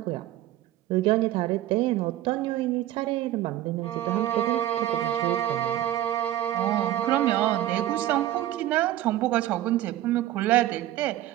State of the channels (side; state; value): left; quieter; 13.6 dB